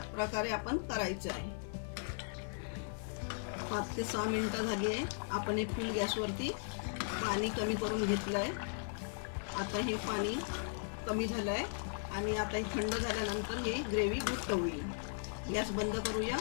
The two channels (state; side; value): silent; right; 53 dB below the other